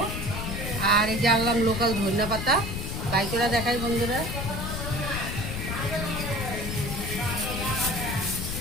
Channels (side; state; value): left; noise; rumble, 4 dB below the sound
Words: আর এই যে আনলাম লোকাল ধনিয়া পাতা, বাই করে দেখাই বন্ধুরা।